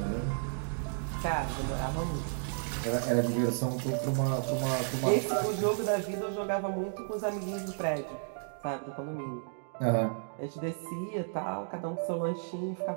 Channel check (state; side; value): silent; left; digital silence